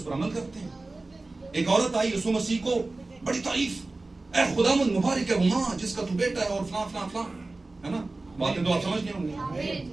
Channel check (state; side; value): quieter; left; 3.2 dB